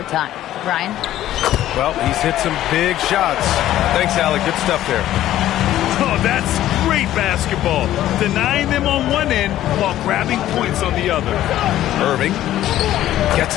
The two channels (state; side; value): quieter; right; 13.3 dB